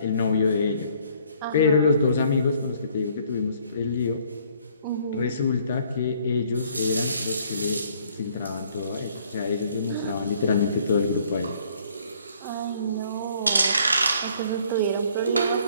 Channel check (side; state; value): both; inverted; correlation -0.61